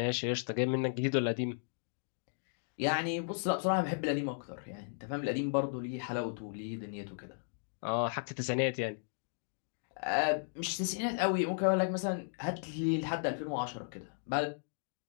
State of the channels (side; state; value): right; silent; digital silence